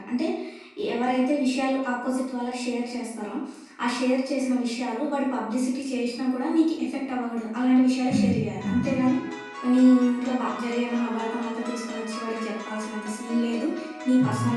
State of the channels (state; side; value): identical; both; correlation 1.00